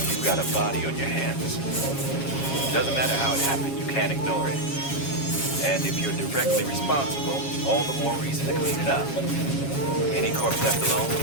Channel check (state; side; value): late; right; 7.3 ms